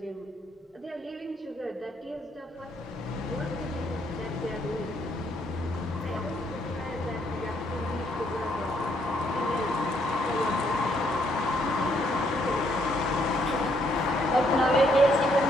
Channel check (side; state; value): both; normal; correlation 0.71